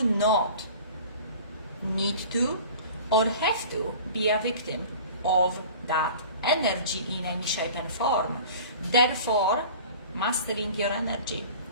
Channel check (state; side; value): inverted; both; correlation -0.42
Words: not need to or have to be a victim of that energy in any shape and form. Therefore, mastering your energy,